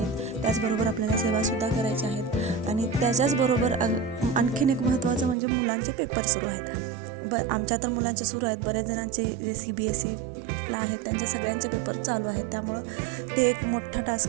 त्याचबरोबर आपल्याला सेवासुद्धा करायच्या आहेत आणि त्याच्याचबरोबर आणखीन एक महत्त्वाचं म्हणजे मुलांचे पेपर सुरू आहेत. आमच्या तर मुलांचे सुरू आहेत, बऱ्याच जणांचे CBSEला आहेत, त्यांचे सगळ्यांचे पेपर चालू आहेत. त्यामुळं ते एक मोठा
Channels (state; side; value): drops out; left; at 5.4 s